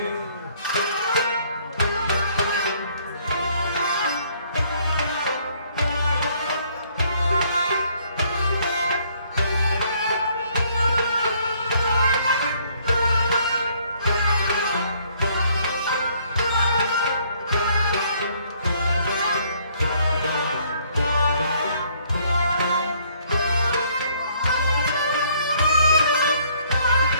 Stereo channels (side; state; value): both; inverted; correlation -0.64